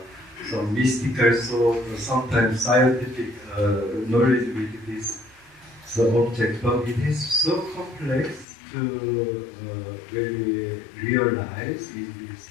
some mystical sort or sometimes scientific knowledge with this object, but it is so complex to really realize in this.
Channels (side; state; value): right; drops out; at 8.5 s